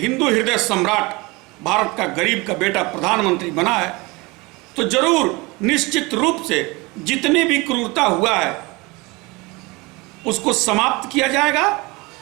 हृदय सम्राट, भारत का गरीब का बेटा प्रधानमंत्री बना है। तो जरूर निश्चित रूप से जितने भी क्रूरता हुआ है उसको समाप्त किया जाएगा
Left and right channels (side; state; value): left; quieter; 24.6 dB